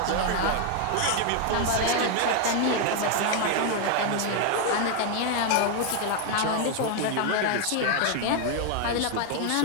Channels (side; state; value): both; different; correlation 0.01